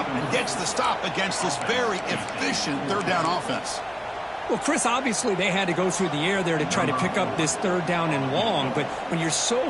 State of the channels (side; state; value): both; identical; correlation 1.00